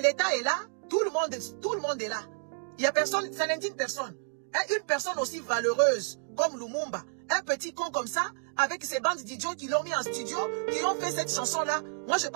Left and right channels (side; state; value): left; silent; digital silence